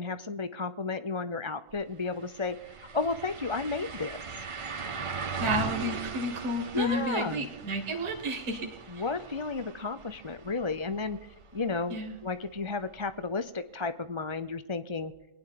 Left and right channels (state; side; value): late; left; 1.4 ms